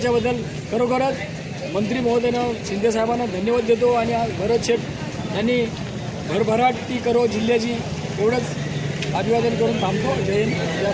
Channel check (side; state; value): both; identical; correlation 1.00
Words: खरोखरच मंत्री महोदयानं शिंदेसाहेबांना धन्यवाद देतो आणि आज भरतशेठ यांनी भरभराटी करो जिल्ह्याची एवढंच अभिवादन करून थांबतो। जय हिंद, जय